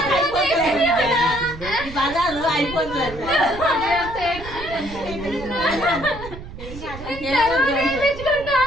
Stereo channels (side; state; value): right; noise; rumble, 12 dB below the sound